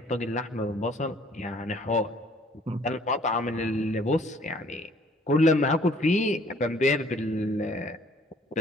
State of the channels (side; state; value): both; normal; correlation 0.58